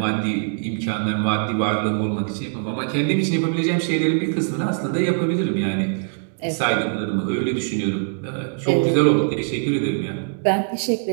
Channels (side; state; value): left; silent; digital silence